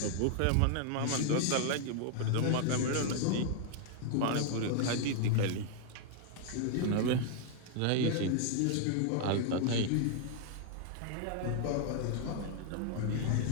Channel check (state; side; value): different; both; correlation 0.00